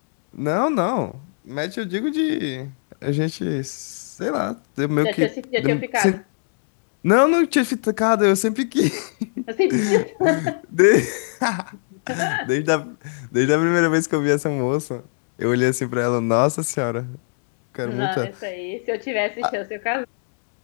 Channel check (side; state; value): right; silent; digital silence